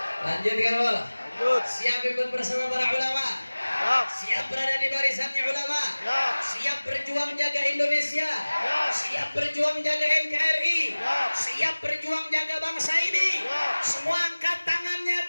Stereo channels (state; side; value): inverted; both; correlation -1.00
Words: Lanjut kamu. Lanjut. Siap ikut bersama para ulama. Siap. Siap berada di barisannya ulama. Siap. Siap berjuang jaga Indonesia. Siap. Siap berjuang jaga NKRI. Siap. Siap berjuang jaga bangsa ini. Siap. Semua angkat tangannya,